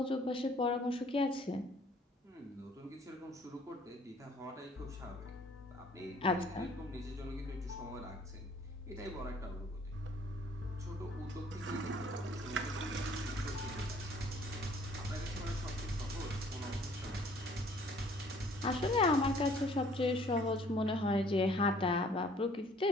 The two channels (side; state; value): both; normal; correlation 0.57